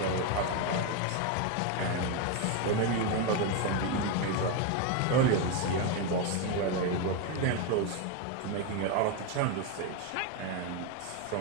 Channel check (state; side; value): different; both; correlation 0.02